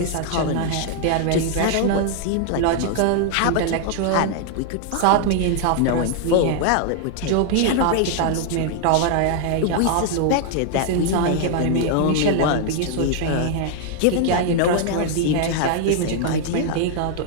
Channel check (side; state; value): both; different; correlation 0.00